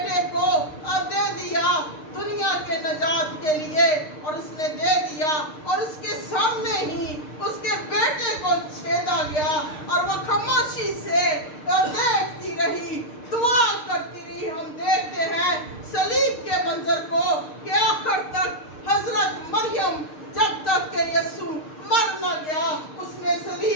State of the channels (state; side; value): late; right; 6.6 ms